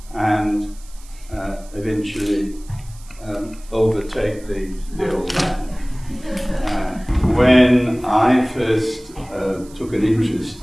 and eventually overtake the old man. When I first took an interest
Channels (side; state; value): right; noise; hiss, 23 dB below the sound